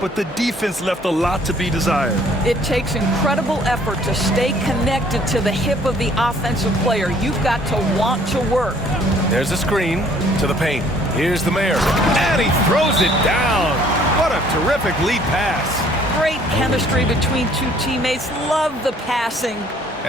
but the defense left a lot to be desired. It takes incredible effort to stay connected to the hip of the offensive player. You've got to want to work. There's a screen to the paint. Here's the mayor. And he throws it down. What a terrific lead pass. Great chemistry between two teammates. Love the passing.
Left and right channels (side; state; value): both; normal; correlation 0.59